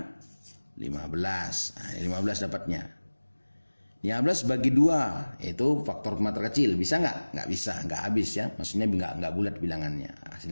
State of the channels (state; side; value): inverted; both; correlation -1.00